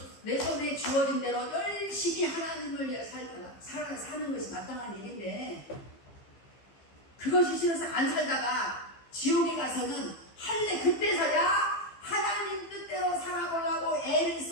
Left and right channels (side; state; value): right; late; 15 ms